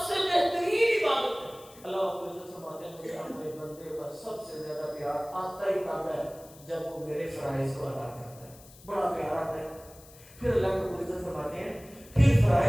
سے بہترین عبادت ہے. اللہ رب العزت فرماتے ہیں مجھے اپنے بندے پر سب سے زیادہ پیار آتا ہی تب ہے جب وہ میرے فرائض کو ادا کرتا ہے. بڑا پیار آتا ہے. پھر اللہ رب العزت فرماتے ہیں پھر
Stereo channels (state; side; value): noise; left; hiss, 22 dB below the sound